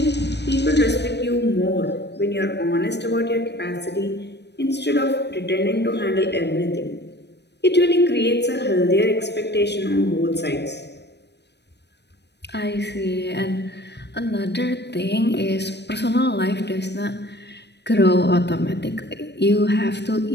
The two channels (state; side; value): late; right; 0.50 ms